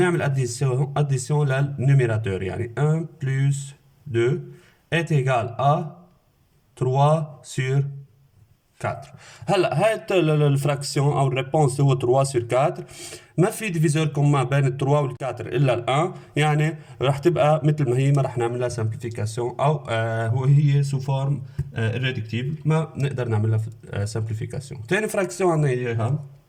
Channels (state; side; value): identical; both; correlation 1.00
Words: اديسيون للنوميراتور يعني 1 plus 2 est égal à 3 sur 4. هلا هاي الفراكسيون او الريبونس هو 3 sur 4. ما في ديفيزور كومان بين ال 3 وال 4 الا ال 1 يعني رح تبقى مثل ما هي ما رح نعمل لها سامبليفيكاسيون او هي سو فورم ريدكتيبل ما نقدر نعمل لها سامبليفيكاسيون. ثاني فراكسيون عندنا اياها